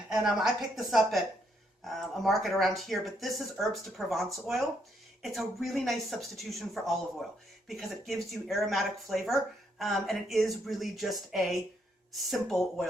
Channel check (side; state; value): both; normal; correlation 0.74